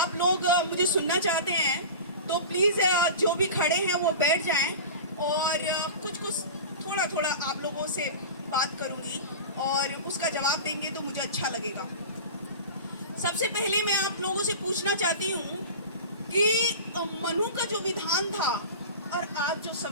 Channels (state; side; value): inverted; both; correlation -0.32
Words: लोग मुझे सुनना चाहते हैं तो प्लीज़ जो भी खड़े हैं वो बैठ जाएं, और कुछ थोड़ा थोड़ा आप लोगों से बात करूँगी और उसका जवाब देंगे तो मुझे अच्छा लगेगा। सबसे पहले मैं आप लोगों से पूछना चाहती हूँ कि मनु का जो विधान था और आज जो